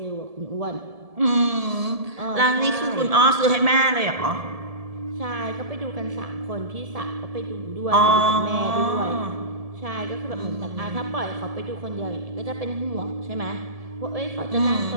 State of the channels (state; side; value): late; left; 1.7 ms